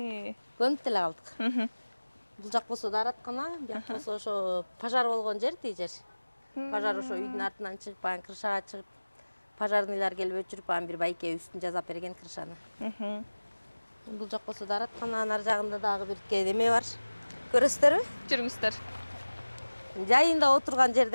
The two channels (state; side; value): inverted; both; correlation -1.00